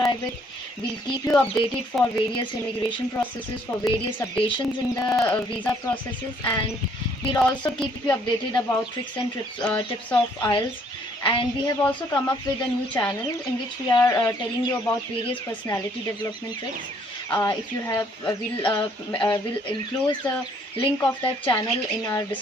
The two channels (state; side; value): normal; both; correlation 0.64